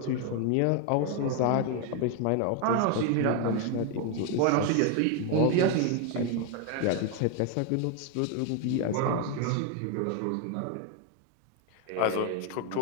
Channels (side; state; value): both; different; correlation 0.01